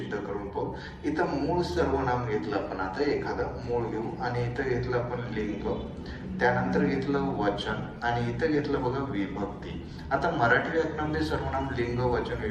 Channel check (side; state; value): both; identical; correlation 1.00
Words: करून पाहू. इथं मूळ सर्वनाम घेतलं आपण, आता एखादं मूळ घेऊ आणि इथं घेतलं आपण लिंग, त्यानंतर घेतलं वचन आणि इथं घेतलं बघा विभक्ती. आता मराठी व्याकरणामध्ये सर्वनाम लिंग, वचन,